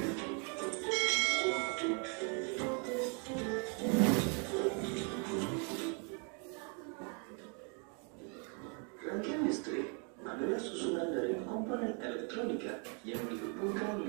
Rangkaian listrik adalah susunan dari komponen elektronika yang dihubungkan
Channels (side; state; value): left; quieter; 38.1 dB